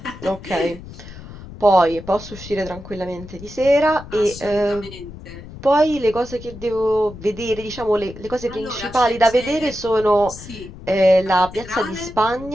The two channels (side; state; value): left; noise; rumble, 15 dB below the sound